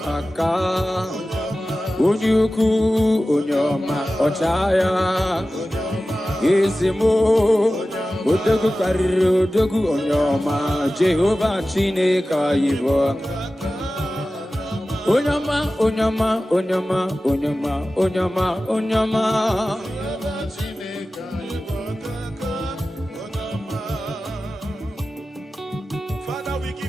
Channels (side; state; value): both; normal; correlation 0.95